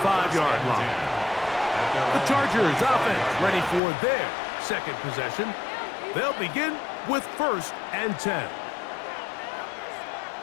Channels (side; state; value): right; drops out; at 3.8 s